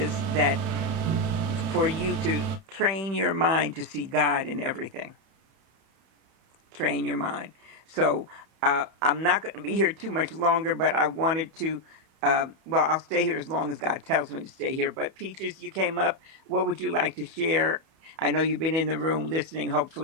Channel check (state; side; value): late; left; 31 ms